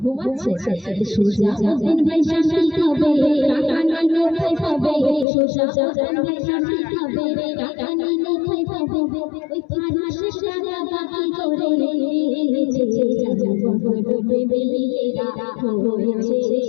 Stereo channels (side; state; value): right; drops out; at 5.2 s